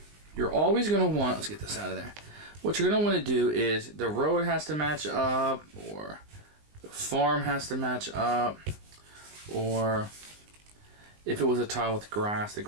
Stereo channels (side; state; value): left; late; 19 ms